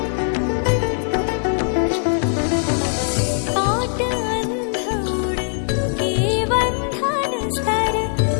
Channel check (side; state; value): right; silent; 57 dB below the other